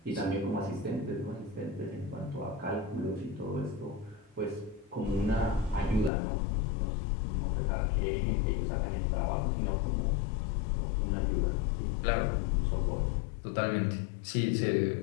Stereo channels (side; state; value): right; drops out; at 6.1 s